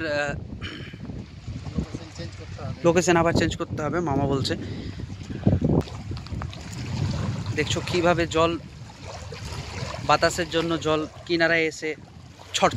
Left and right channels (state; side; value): identical; both; correlation 1.00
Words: লোকেশন আবার চেঞ্জ করতে হবে মামা বলছে। দেখছো কিভাবে জল, বাতাসের জন্য জল কিনারায় এসে ছড়